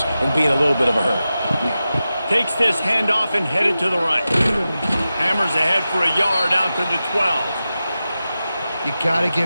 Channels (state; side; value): inverted; both; correlation -0.93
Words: and be in a little bit of a hurry. Takes this handoff and headed to the right. Hammers ahead for a yard out to the 12. You got to